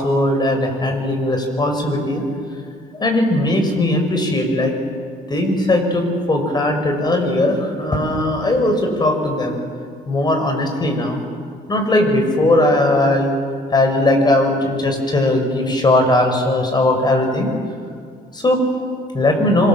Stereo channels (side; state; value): both; normal; correlation 0.58